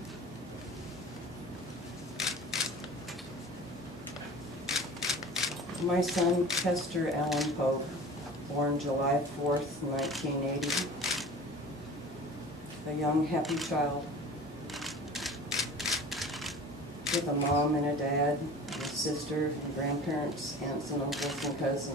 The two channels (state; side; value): normal; both; correlation 0.40